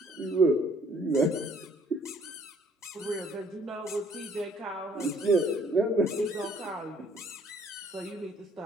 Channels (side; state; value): both; normal; correlation 0.61